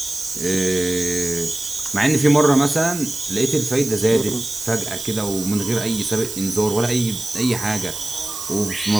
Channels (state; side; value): noise; right; hiss, 9 dB below the sound